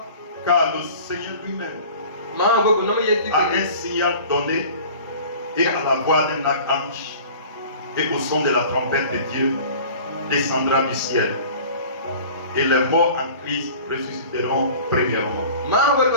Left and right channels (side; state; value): both; inverted; correlation -0.43